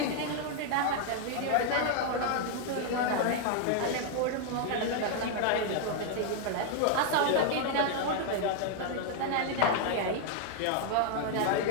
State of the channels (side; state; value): both; different; correlation 0.00